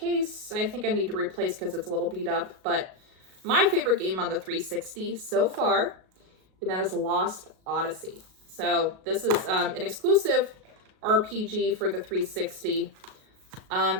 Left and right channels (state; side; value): late; left; 37 ms